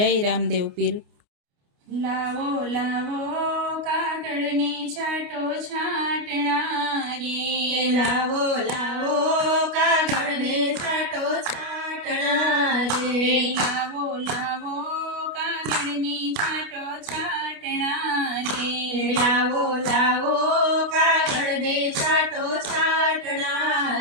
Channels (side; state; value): left; late; 29 ms